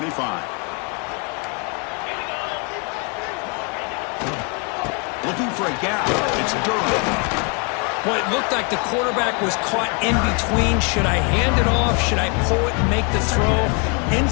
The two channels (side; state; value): right; quieter; 34.2 dB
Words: Looking for a gap. It's Durham. Well, it looked like the quarterback was caught in between. Should I hand it off? Should I pull it and make the throw?